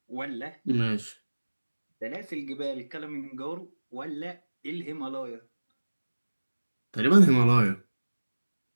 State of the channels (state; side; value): inverted; both; correlation -1.00